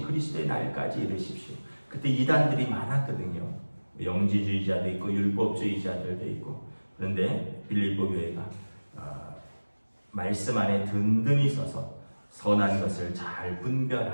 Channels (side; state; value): both; inverted; correlation -1.00